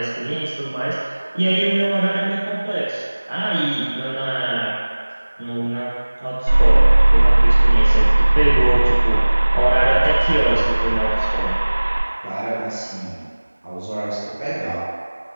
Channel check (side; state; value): both; inverted; correlation -1.00